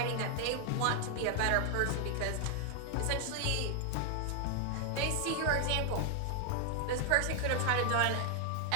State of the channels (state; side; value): different; both; correlation 0.00